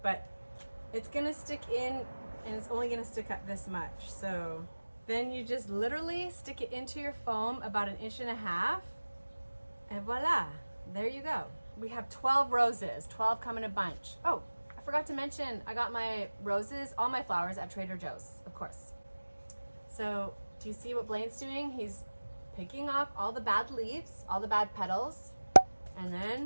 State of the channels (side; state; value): both; inverted; correlation -1.00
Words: But it's gonna stick in, and it's only gonna stick up this much. So then you just literally stick it into your foam about 1.5 inches, and voila, there you go. We have 12 roses, 12 come in a bunch. Oh, I forgot to mention, I got my roses, all my flowers at Trader Joe's, of course. So do you see what Blaine's doing? He's picking off all the bad leaves, all the bad petals, and